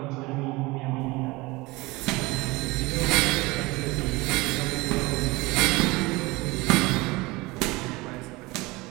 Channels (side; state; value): left; quieter; 22.6 dB